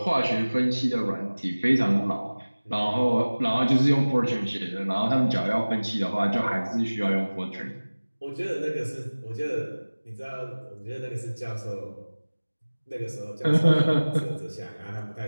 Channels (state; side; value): inverted; both; correlation -1.00